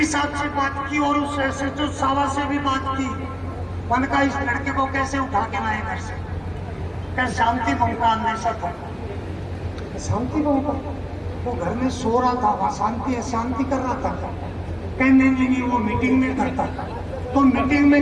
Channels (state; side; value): identical; both; correlation 1.00